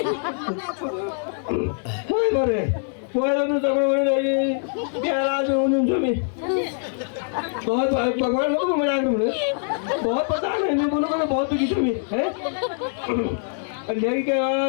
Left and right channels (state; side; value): silent; right; digital silence